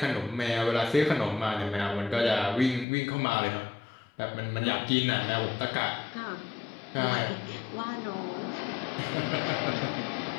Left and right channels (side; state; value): right; drops out; at 2.9 s